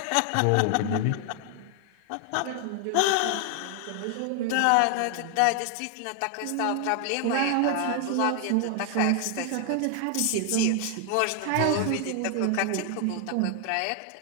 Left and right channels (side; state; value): both; different; correlation 0.00